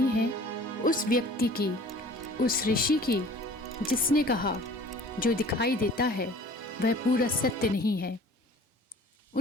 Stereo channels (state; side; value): normal; both; correlation 0.48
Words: है उस व्यक्ति की, उस ऋषि की, जिसने कहा जो दिखाई देता है वह पूरा सत्य नहीं है।